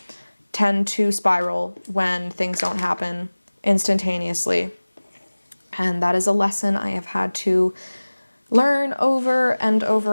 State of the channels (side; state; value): both; inverted; correlation -1.00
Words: tend to spiral when things don't happen instantaneously. And that is a lesson I have had to learn over and